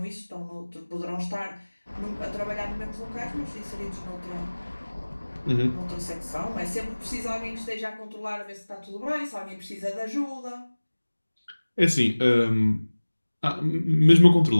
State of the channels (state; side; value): inverted; both; correlation -1.00